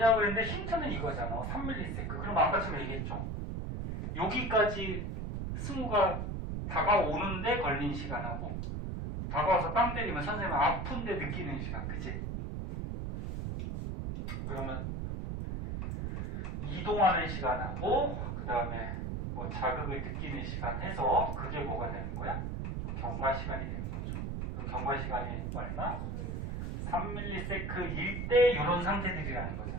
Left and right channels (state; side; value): noise; right; rumble, 3 dB below the sound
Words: 했는데 힌트는 이거잖아. 3ms. 그럼 아까처럼 얘기했죠. 여기까지 승우가 다가오는데 걸린 시간하고 다가와서 땅 때리면 선생님 아픈데 느끼는 시간, 그치? 그러면 이동하는 시간하고 그 다음에 뭐 자극을 느끼는 시간 해서 그게 뭐가 되는 거야? 경과 시간이 되는 거죠. 그럼 경과 시간이 얼마? 3ms일 때 이런 상태들이라는 거잖아,